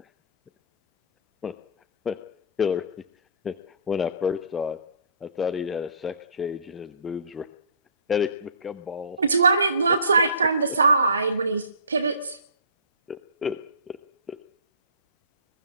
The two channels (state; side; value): inverted; both; correlation -0.46